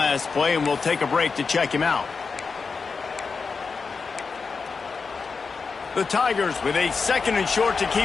play, and we'll take a break to check him out. The Tigers with a 2nd and short to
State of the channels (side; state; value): right; quieter; 4.9 dB